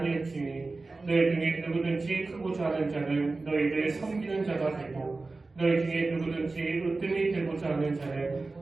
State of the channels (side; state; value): left; quieter; 3.5 dB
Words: 너희 중에 누구든지 크고자 하는 자는 너희를 섬기는 자가 되고 너희 중에 누구든지 으뜸이 되고자 하는 자는